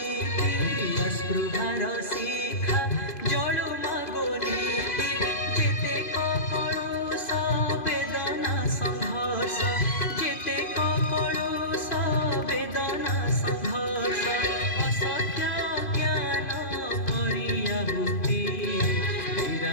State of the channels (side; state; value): right; late; 2.5 ms